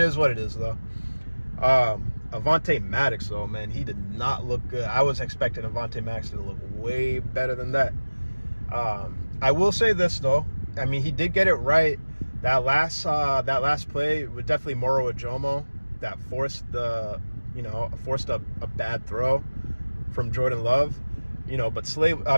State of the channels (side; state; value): both; inverted; correlation -1.00